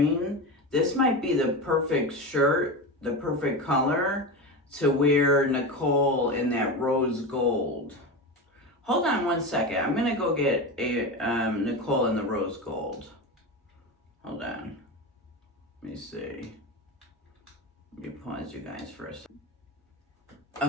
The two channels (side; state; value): both; normal; correlation 0.22